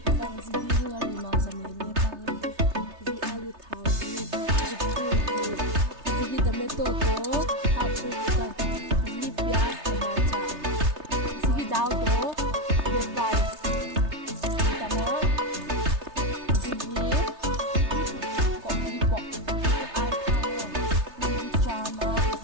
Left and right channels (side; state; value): left; late; 3.3 ms